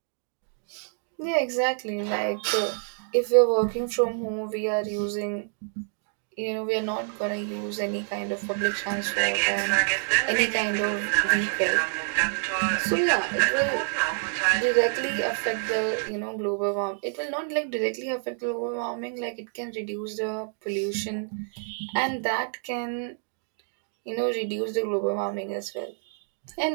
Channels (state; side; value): silent; left; 60 dB below the other